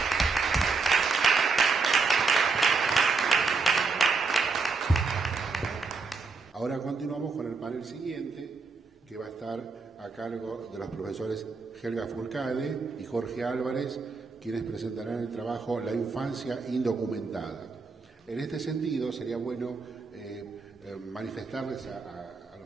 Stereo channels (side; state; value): left; quieter; 4.4 dB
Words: Ahora continuamos con el panel siguiente, que va a estar a cargo de los profesores Helga Furcade y Jorge Álvarez, quienes presentarán el trabajo La infancia indocumentada. En este sentido, sería bueno manifestarles a